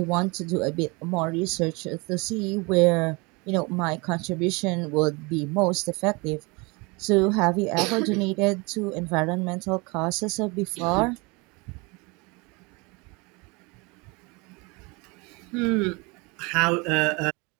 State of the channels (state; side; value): quieter; left; 27.6 dB